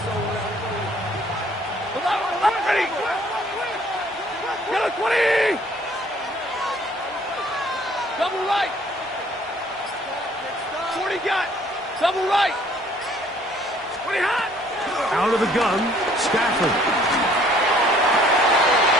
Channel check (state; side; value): normal; both; correlation 0.59